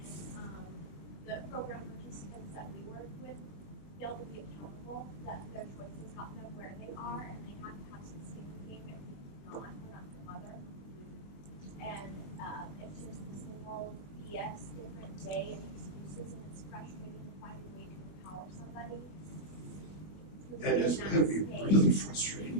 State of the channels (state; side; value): late; right; 20 ms